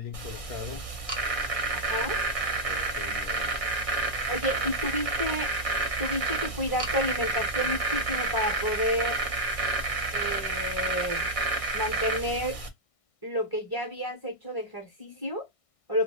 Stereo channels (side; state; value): right; late; 1.6 ms